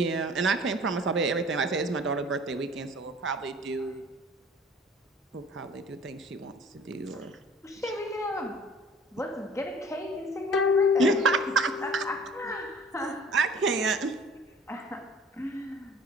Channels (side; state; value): both; normal; correlation 0.48